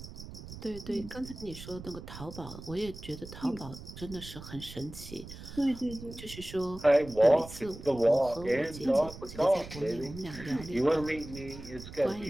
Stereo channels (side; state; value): right; noise; rumble, 13 dB below the sound